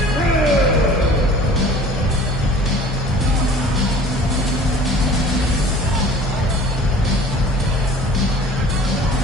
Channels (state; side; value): normal; both; correlation 0.47